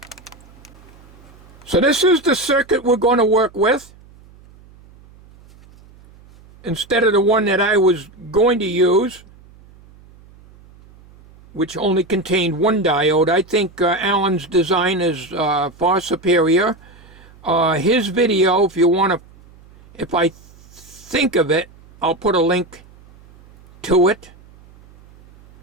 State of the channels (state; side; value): noise; right; hum, 25 dB below the sound